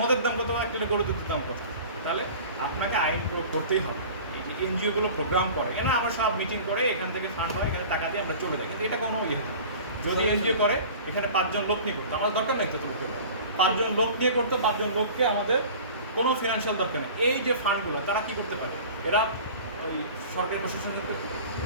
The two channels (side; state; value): both; inverted; correlation -0.41